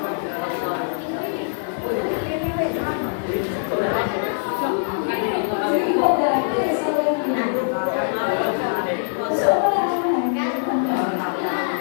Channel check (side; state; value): right; silent; digital silence